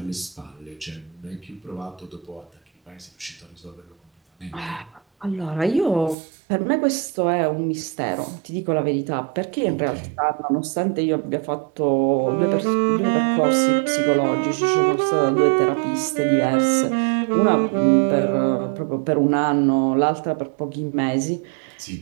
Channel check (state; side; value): drops out; left; at 6.2 s